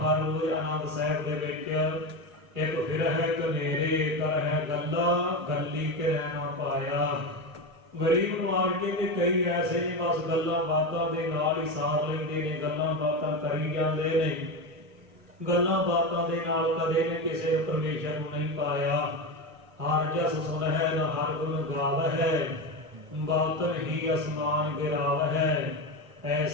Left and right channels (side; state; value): left; late; 1.1 ms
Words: ਰੋਜ਼ ਆਨੰਦ ਸਾਹਿਬ ਦੇ ਵਿੱਚ, ਇੱਕ ਫਿਰ ਹੈ ਕਨੇਰੇ ਕਰ ਹੈ ਗੱਲਾਂ ਗੱਲੀ ਕਿਰੈ ਨਾ ਪਾਇਆ। ਗਰੀਬ ਨਵਾਜ ਕਹਿੰਦੇ ਕਈ ਐਸੇ ਨੇ ਬਸ ਗੱਲਾਂ ਬਾਤਾਂ ਦੇ ਨਾਲ ਹੀ ਸਾਰ ਲੈਂਦੇ ਨੇ, ਗੱਲਾਂ ਬਾਤਾਂ ਕਰੀ ਜਾਂਦੇ ਨੇ, ਗੱਲਾਂ ਬਾਤਾਂ ਦੇ ਨਾਲ ਕਦੇ ਨੇ ਕਿਸੇ ਨੂੰ ਪਰਮੇਸ਼ਰ ਨੂੰ ਨਹੀਂ ਪਾਇਆ। ਹਰ ਜਸ ਸੁਨਹਿ ਨਾ ਹਰ ਗੁਣ ਗਾਵਹਿ ਬਾਤਨ ਹੀ ਅਸਮਾਨ ਗਿਰਾਵਹਿ।